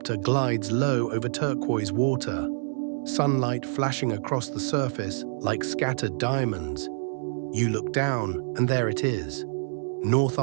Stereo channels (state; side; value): silent; left; digital silence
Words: glides low over turquoise water, sunlight flashing across the surface like scattered diamonds. You look down, and there it is. North